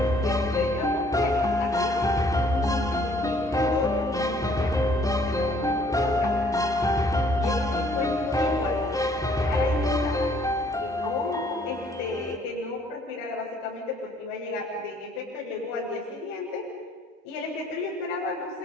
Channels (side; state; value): both; normal; correlation 0.61